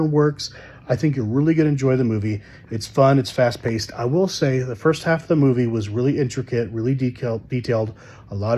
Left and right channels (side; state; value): both; identical; correlation 1.00